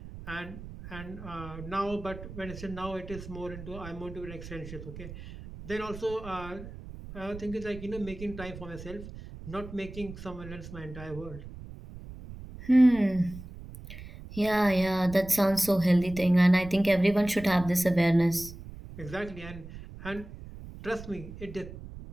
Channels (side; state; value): right; noise; rumble, 13 dB below the sound